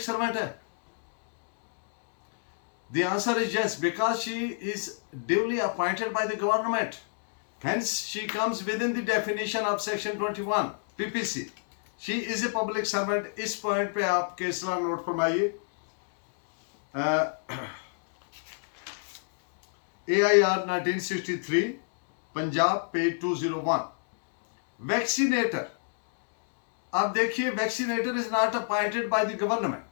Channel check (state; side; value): silent; right; digital silence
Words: सर्वेंट है? The answer is yes, because she is duly appointed by the government. Hence, she comes within the definition of section 21 PPC. She is a public servant. इस point पे आप case law note फरमाइए। AIR 1963 Punjab page 201। Vaccinator, अब देखिए, vaccinator is not appointed by the